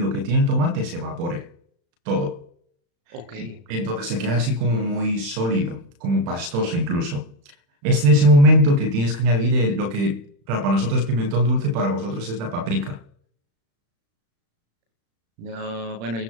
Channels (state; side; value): late; left; 35 ms